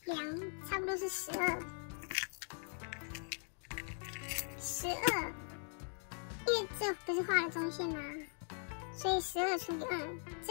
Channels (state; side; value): silent; right; 51 dB below the other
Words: 量差不多是12，因为这不是画了中线吗？所以12除以2，